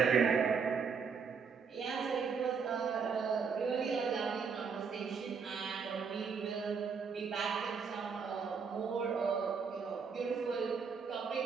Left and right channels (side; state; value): left; quieter; 5.8 dB